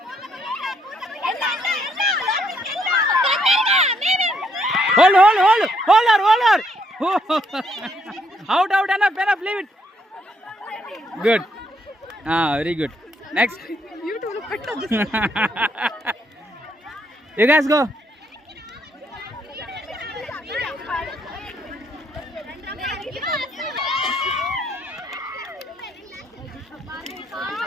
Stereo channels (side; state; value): both; normal; correlation 0.72